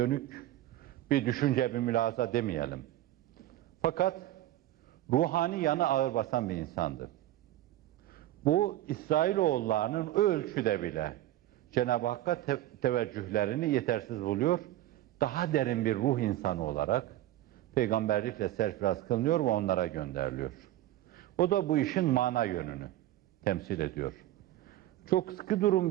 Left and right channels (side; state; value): left; quieter; 14.5 dB